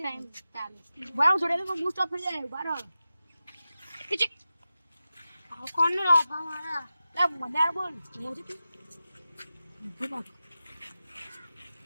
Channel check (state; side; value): inverted; both; correlation -0.93